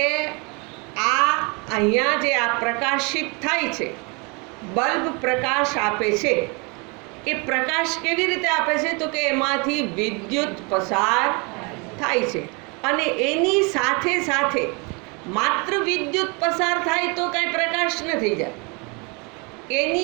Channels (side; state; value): left; quieter; 30.6 dB